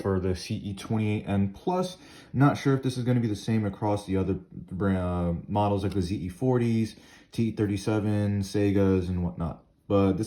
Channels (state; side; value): identical; both; correlation 1.00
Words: the CE28N Plus. Not sure if this is going to be the same across the other models like the ZE40s, TE37, Segas, and whatnot. But